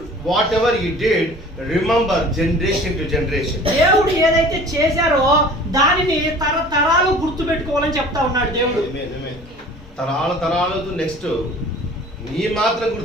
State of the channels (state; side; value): normal; both; correlation 0.45